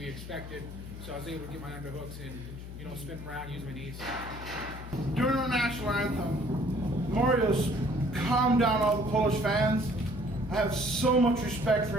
expected, so I was able to get my underhooks and, spin around, use my knees. During our national anthem, Mariusz calmed down all the Polish fans. I have so much respect for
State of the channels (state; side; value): noise; left; hum, 11 dB below the sound